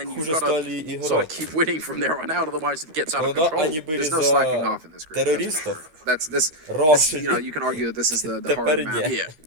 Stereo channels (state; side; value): late; left; 13 ms